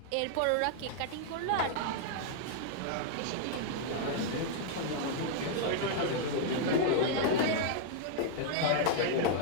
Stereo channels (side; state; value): both; different; correlation -0.01